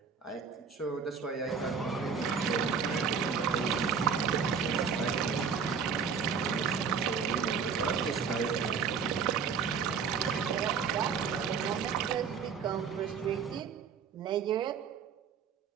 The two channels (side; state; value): left; quieter; 6.4 dB